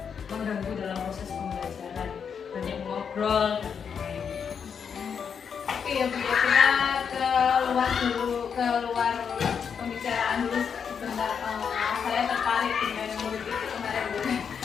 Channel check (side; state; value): right; quieter; 6.9 dB